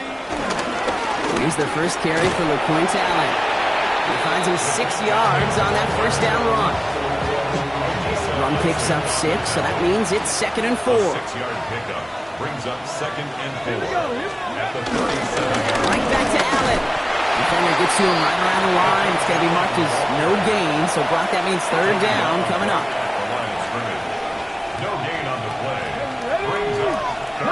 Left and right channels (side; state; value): both; identical; correlation 1.00